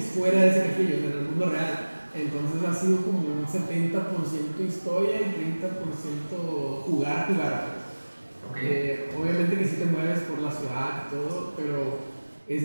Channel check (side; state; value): both; inverted; correlation -1.00